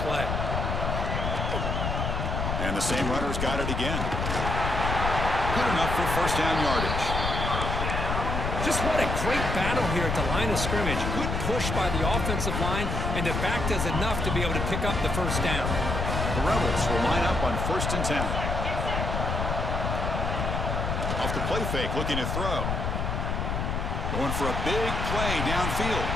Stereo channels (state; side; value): noise; left; rumble, 1 dB below the sound